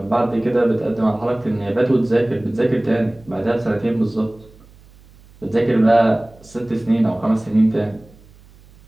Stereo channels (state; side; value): noise; right; hum, 26 dB below the sound